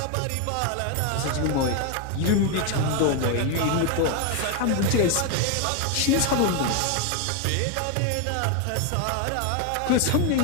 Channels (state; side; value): different; both; correlation 0.01